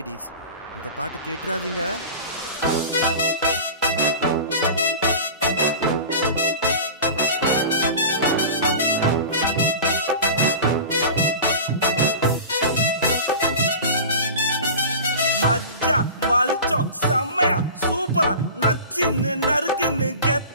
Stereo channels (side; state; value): both; inverted; correlation -0.34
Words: இந்த பாட்டு கேட்டுறாதீங்க. மஜ்ஜா மல்ச்சம் செம்மையா சூப்பரா நச்சின்னு நறுக்குன்னு